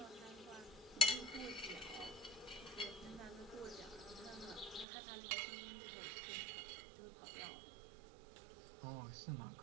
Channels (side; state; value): left; drops out; at 4.9 s